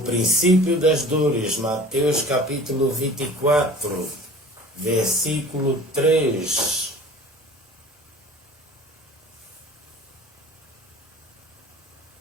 das dores. Mateus capítulo 24, versículo 3.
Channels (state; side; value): normal; both; correlation 0.44